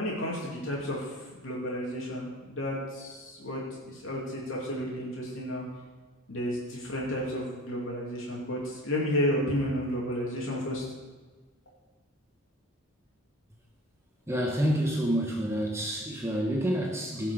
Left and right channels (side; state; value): both; normal; correlation 0.46